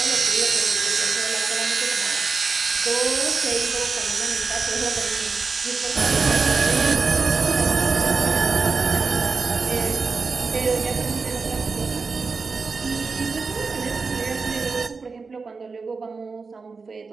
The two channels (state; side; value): quieter; left; 4.6 dB